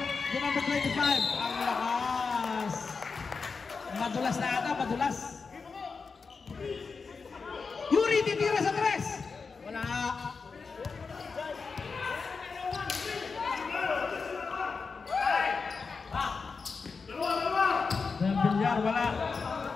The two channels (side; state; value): right; quieter; 4.8 dB